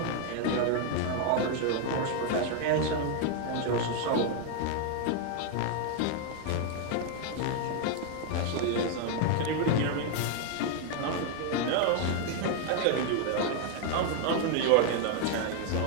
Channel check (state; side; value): different; both; correlation 0.00